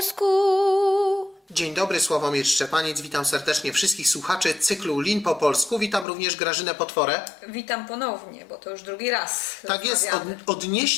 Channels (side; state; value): right; drops out; at 6.1 s